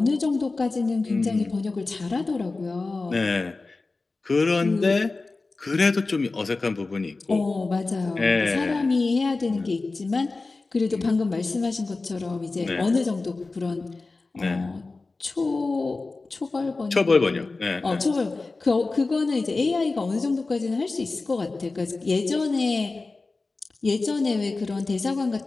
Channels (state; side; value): quieter; right; 3.6 dB